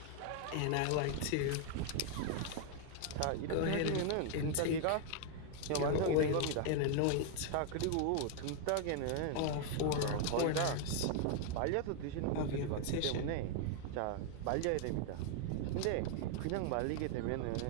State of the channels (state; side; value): different; both; correlation 0.00